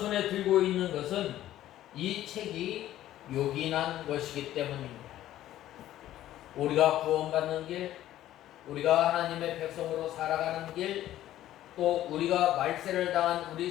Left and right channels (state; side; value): quieter; right; 13.3 dB